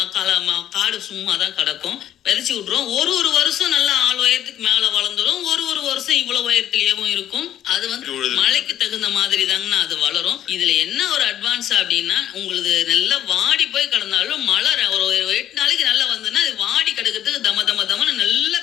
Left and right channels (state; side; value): quieter; right; 11.3 dB